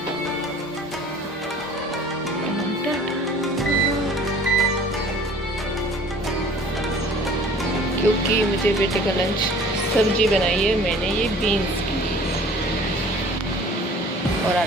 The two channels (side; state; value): both; normal; correlation 0.49